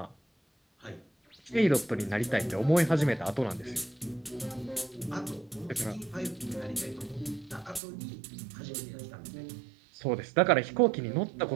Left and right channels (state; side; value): drops out; left; at 7.8 s